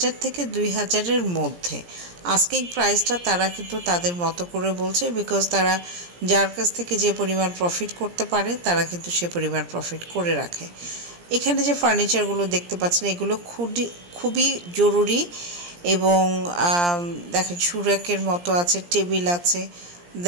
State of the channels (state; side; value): late; left; 17 ms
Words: থেকে 2,000-এর মধ্যে। আস্কিং প্রাইসটা তারা কিন্তু তাদের মতো করে বলছে, বিকজ তারা যার কাছ থেকে যে পরিমাণ প্রফিট করতে পারে তারা কিন্তু সে পরিমাণ প্রফিট করে রাখে। এখানে যে ফার্নিচারগুলো দেখতে পাচ্ছেন এগুলো খুবই জরুরি, এবং দেখেন সুরাকের মতো আছে, টেবিল আছে,